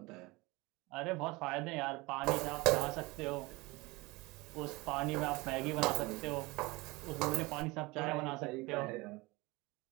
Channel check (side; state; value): left; quieter; 23.1 dB